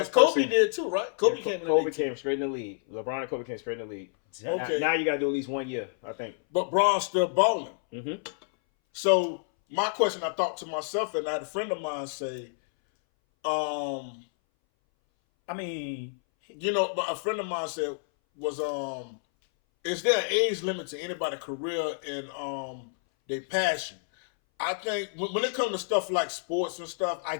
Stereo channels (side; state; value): right; silent; 59 dB below the other